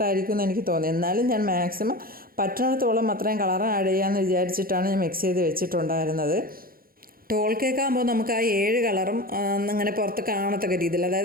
എന്ന് എനിക്ക് തോന്നി. എന്നാലും ഞാൻ മാക്സിമം പറ്റുന്നിടത്തോളം അത്രയും കളർ ആഡ് ചെയ്യാമെന്ന് വിചാരിച്ചിട്ടാണ് ഞാൻ മിക്സ് ചെയ്ത് വെച്ചിട്ടുണ്ടായിരുന്നത്. ടോൾ കേക്കാകുമ്പോൾ നമുക്ക് ആ 7 കളറും അങ്ങനെ പുറത്ത് കാണത്തക്ക രീതിയിൽ,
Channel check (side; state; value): left; late; 0.42 ms